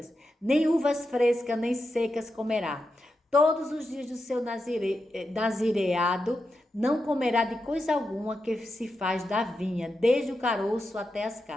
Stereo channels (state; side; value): normal; both; correlation 0.88